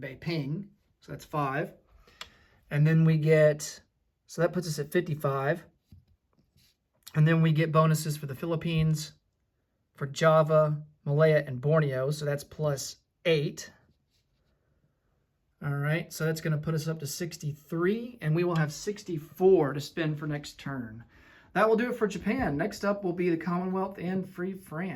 Beiping. So that's 5. And then we get, so that puts us at 55. And then we get bonuses for the Philippines, for Java, Malaya, and Borneo. So that's plus 8. All right, so that's going to put us up to 63, and we will have 64 to spend for next turn. That will do it for Japan. Next up will be the Commonwealth and Free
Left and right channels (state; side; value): identical; both; correlation 1.00